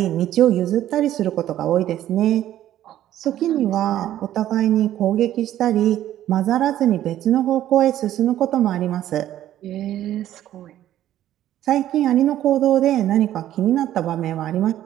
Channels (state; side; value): quieter; left; 12.5 dB